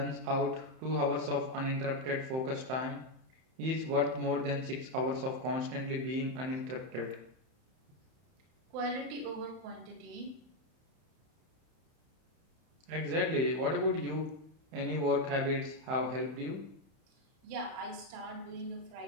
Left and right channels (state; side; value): late; left; 31 ms